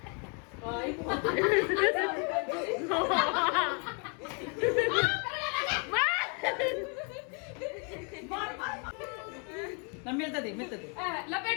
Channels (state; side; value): quieter; right; 36.1 dB